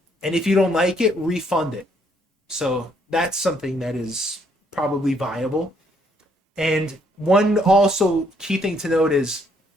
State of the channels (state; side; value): normal; both; correlation 0.69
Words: and if you don't like it, refund it. So that's something that is probably viable. And one also key thing to note is